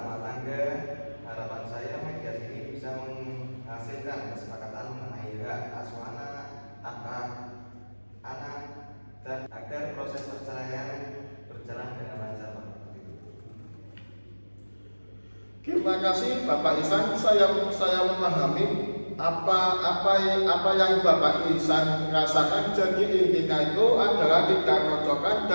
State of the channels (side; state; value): both; inverted; correlation -1.00